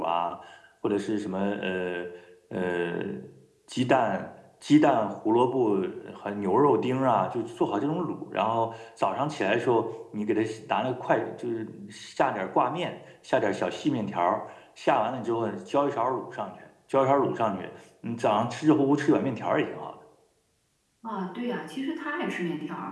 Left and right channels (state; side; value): identical; both; correlation 1.00